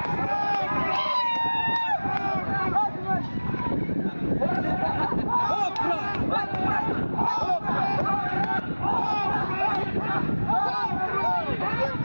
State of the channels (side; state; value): both; inverted; correlation -1.00